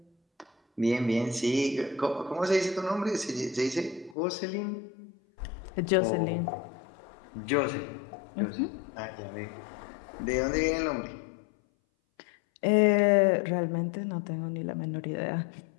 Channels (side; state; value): right; drops out; at 4.2 s